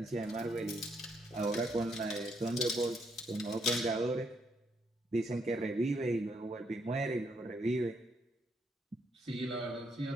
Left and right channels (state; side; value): normal; both; correlation 0.74